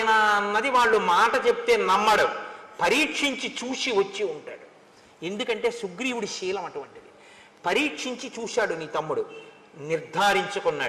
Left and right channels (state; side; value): identical; both; correlation 1.00